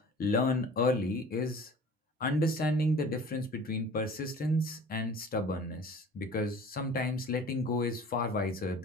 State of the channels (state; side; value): normal; both; correlation 0.44